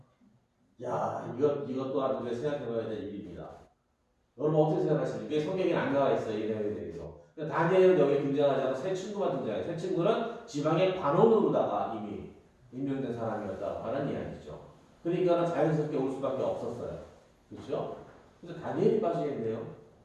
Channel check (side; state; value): both; identical; correlation 1.00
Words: 야, 이것 또한 우리가 생각해봐야 될 일입니다. 여러분 어떻게 생각하십니까? 이게 성경에 안 나와 있어요, 이 내용에 대해서. 다니엘은 여기 등장하지 않고 세 친구만 등장해요. 세 친구는 지방의 관원으로다가 이미 임명된 사람이었다고 하는 이야기죠. 그러니까 자연스럽게 올 수밖에 없었어요. 그렇죠? 그래서 다니엘이 빠지겠네요.